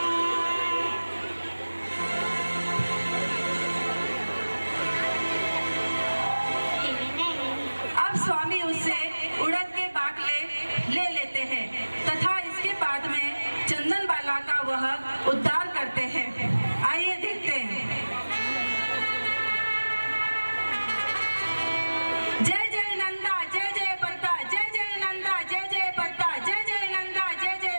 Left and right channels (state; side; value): inverted; both; correlation -1.00